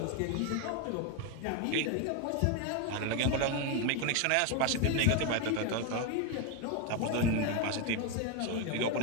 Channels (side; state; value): both; different; correlation 0.02